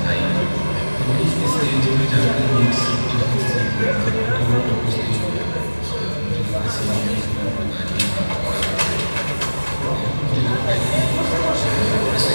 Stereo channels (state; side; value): inverted; both; correlation -1.00